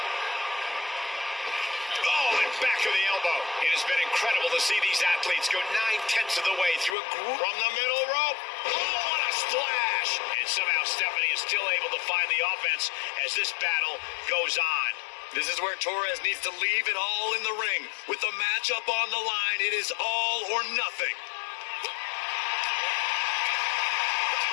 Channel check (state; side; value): drops out; right; at 7.0 s